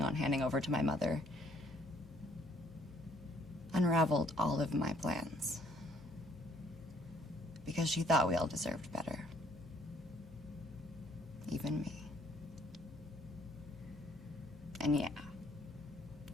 on handing over to my mother unraveled all of my plans. Because she thought we all deserved better. Even me. And yeah,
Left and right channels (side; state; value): both; normal; correlation 0.62